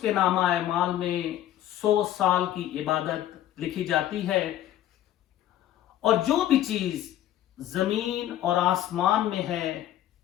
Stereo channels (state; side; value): quieter; right; 12.4 dB